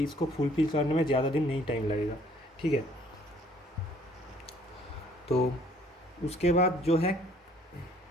इसको फुलफिल करने में ज़्यादा दिन नहीं टाइम लगेगा, ठीक है। तो उसके बाद जो है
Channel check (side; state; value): both; normal; correlation 0.60